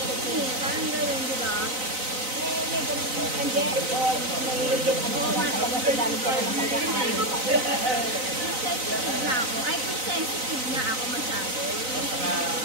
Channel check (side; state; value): left; late; 3.9 ms